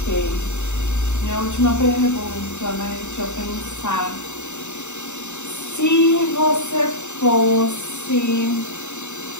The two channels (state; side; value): late; right; 0.84 ms